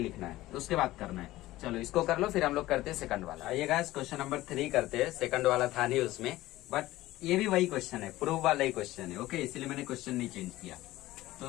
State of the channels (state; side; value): quieter; right; 16.8 dB